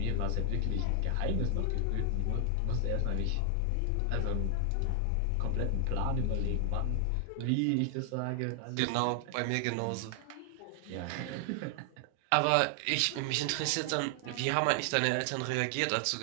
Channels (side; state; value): both; different; correlation 0.00